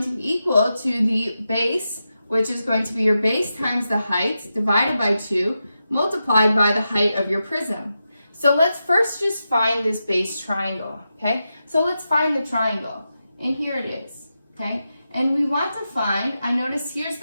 to be equal to the base, which is going to be your base times the height, divided by 2, multiplied by the height of your prism. So let's first just find this base triangle, okay? So let's find the triangle, and here it is, okay? And we want to find, I notice here's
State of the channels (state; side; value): inverted; both; correlation -0.89